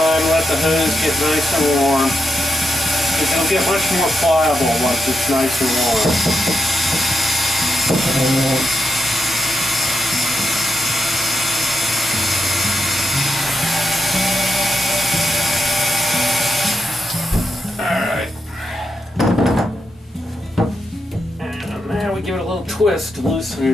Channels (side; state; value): both; normal; correlation 0.85